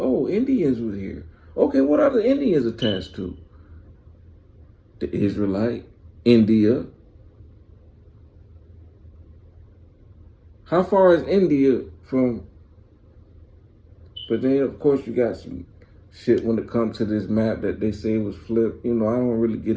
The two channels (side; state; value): both; identical; correlation 1.00